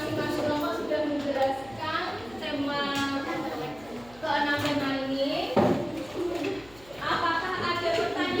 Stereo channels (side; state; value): left; noise; hum, 24 dB below the sound